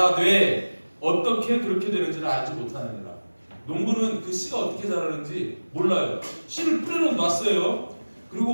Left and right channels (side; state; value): both; inverted; correlation -1.00